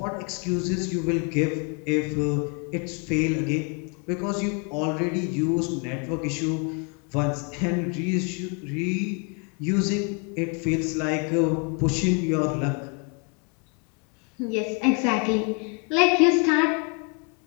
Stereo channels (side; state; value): right; quieter; 34.8 dB